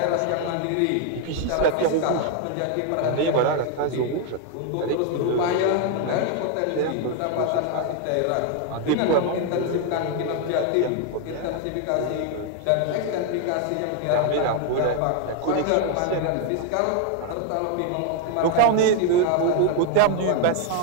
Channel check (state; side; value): different; both; correlation 0.01